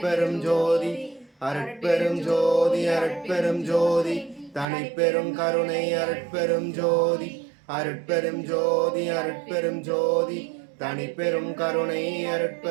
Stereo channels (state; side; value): drops out; left; at 4.7 s